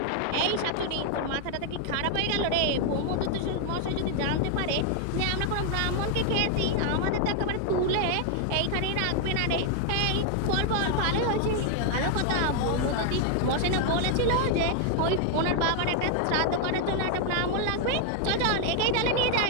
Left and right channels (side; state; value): both; different; correlation 0.00